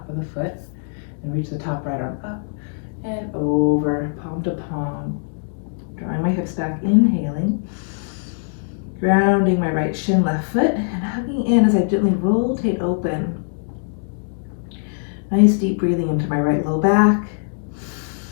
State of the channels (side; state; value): right; silent; digital silence